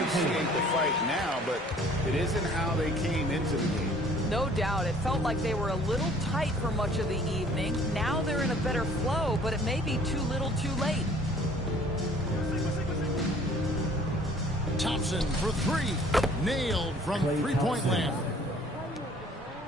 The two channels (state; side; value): normal; both; correlation 0.54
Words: the fight now, but it isn't how they came into the game. No doubt. It felt like they were a little tight for much of the evening. Now they're in a better flow, but it may be too little too late. Thompson for three. Nailed from three-point land.